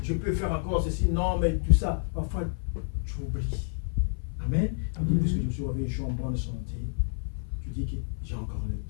je peux faire encore ceci, non, mais tout ça. Parfois, tu oublies. Amen. Puisque je suis réveillé, je suis en bonne santé. Tu dis que j'ai encore le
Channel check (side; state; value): right; silent; 56 dB below the other